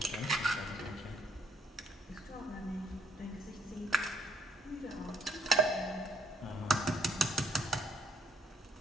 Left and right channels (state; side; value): normal; both; correlation 0.66